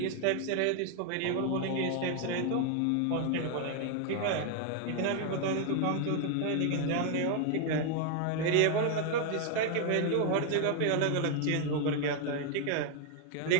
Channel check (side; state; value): both; different; correlation 0.00